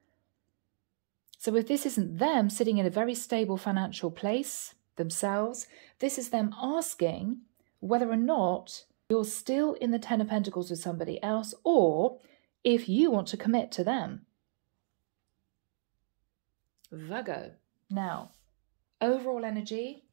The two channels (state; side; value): silent; left; digital silence